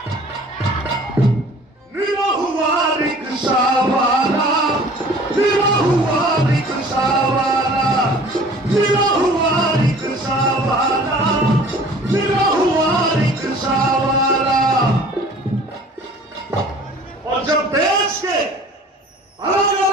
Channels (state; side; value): normal; both; correlation 0.48